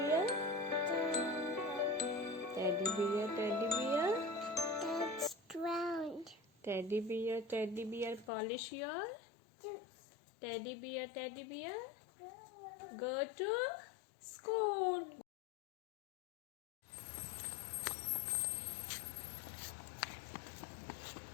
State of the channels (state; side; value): drops out; right; at 8.3 s